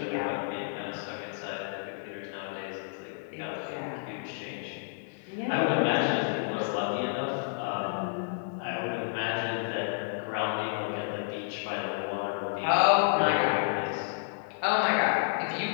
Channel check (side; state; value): right; silent; digital silence